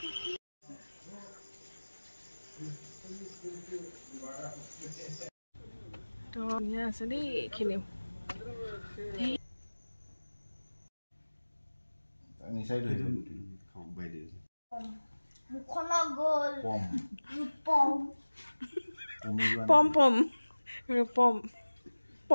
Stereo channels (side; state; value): both; inverted; correlation -1.00